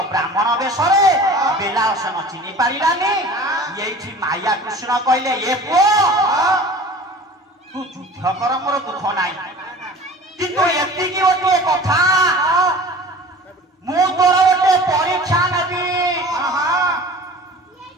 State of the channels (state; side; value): normal; both; correlation 0.41